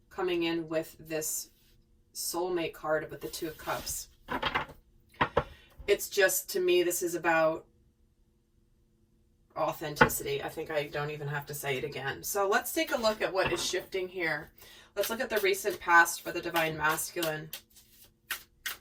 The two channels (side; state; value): both; identical; correlation 1.00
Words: coming in with this soulmate card with the Two of Cups, it's just, to me, this is about authenticity. I think I don't even have to say it again. So let's take a look at what is shifting here. Let's look at the recent past for the divine masculine.